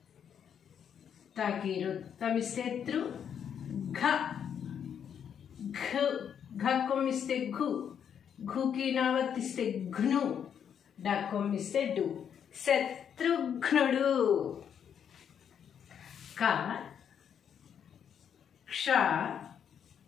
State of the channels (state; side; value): quieter; right; 8.3 dB